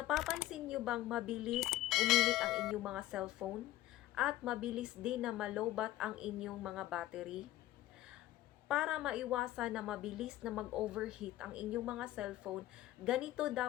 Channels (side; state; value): right; quieter; 15.0 dB